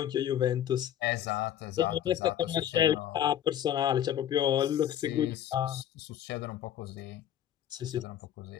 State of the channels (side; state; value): right; quieter; 10.8 dB